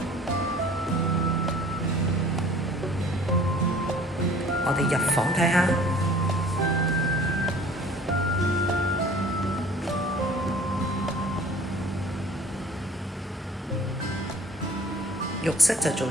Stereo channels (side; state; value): both; normal; correlation 0.49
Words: 我哋入房睇下。浴室就做